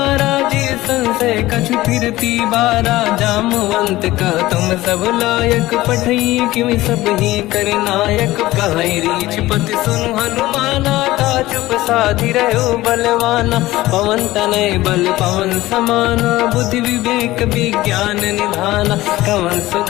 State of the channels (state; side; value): quieter; right; 17.3 dB